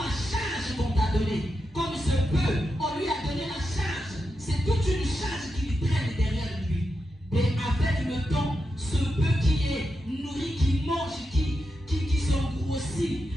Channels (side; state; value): both; normal; correlation 0.87